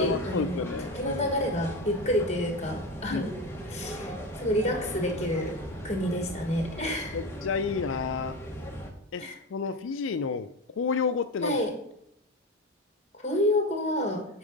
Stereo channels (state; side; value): normal; both; correlation 0.21